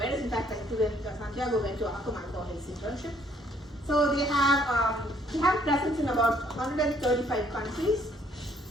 In fact, Santiago went to Akamai for his internship. So they have presence in about 135 countries.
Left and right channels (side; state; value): both; normal; correlation 0.65